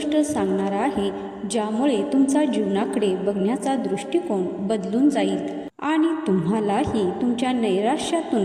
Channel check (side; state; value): both; identical; correlation 1.00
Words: सांगणार आहे ज्यामुळे तुमचा जीवनाकडे बघण्याचा दृष्टिकोन बदलून जाईल आणि तुम्हालाही तुमच्या